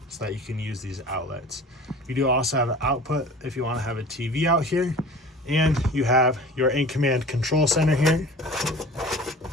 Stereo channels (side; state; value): both; normal; correlation 0.41